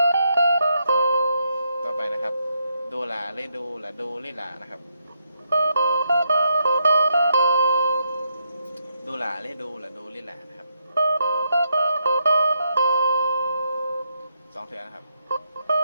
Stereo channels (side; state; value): both; inverted; correlation -0.79